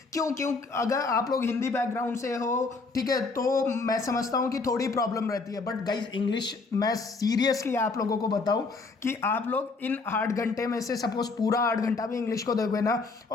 क्यों अगर आप लोग हिंदी बैकग्राउंड से हो, ठीक है, तो मैं समझता हूँ कि थोड़ी प्रॉब्लम रहती है। बट गाइज इंग्लिश, मैं सीरियसली आप लोगों को बताऊँ कि आप लोग इन 8 घंटे में से सपोज पूरा 8 घंटा भी इंग्लिश को दोगे ना,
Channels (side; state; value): right; quieter; 4.0 dB